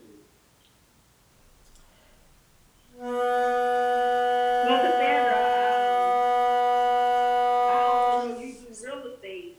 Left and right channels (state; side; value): identical; both; correlation 1.00